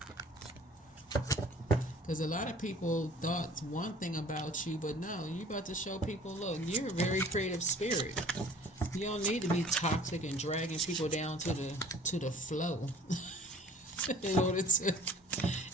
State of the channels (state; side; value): normal; both; correlation 0.49